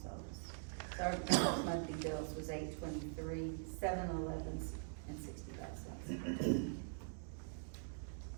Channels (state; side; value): silent; left; digital silence